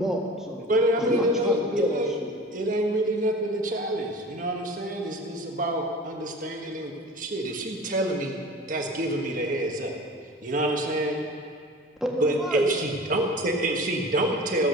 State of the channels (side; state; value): both; normal; correlation 0.38